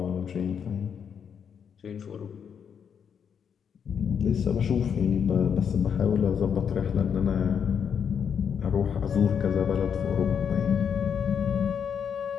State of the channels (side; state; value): right; quieter; 7.4 dB